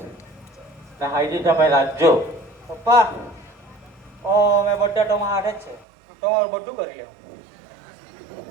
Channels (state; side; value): drops out; left; at 5.9 s